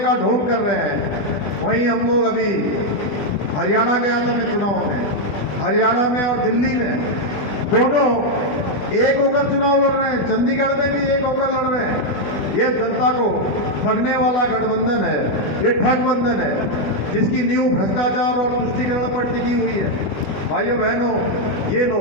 ढोंग कर रहे हैं। वहीं हम लोग अभी हरियाणा गया था मैं चुनाव में, हरियाणा में और दिल्ली में दोनों एक होकर चुनाव लड़ रहे हैं, चंडीगढ़ में भी एक होकर लड़ रहे हैं। ये जनता को ठगने वाला गठबंधन है, ये ठगबंधन है जिसकी नींव भ्रष्टाचार और तुष्टीकरण पर टिकी हुई है। भाइयों बहनों, ये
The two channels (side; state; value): right; late; 20 ms